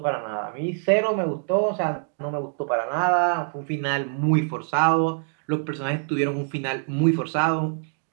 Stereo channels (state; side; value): silent; left; 62 dB below the other